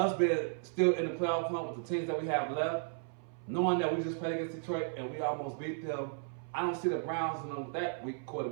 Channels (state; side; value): silent; left; 55 dB below the other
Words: being still in the playoff hunt with the teams that we have left, knowing that we just played against Detroit and we almost beat them, I don't see the Browns in that weak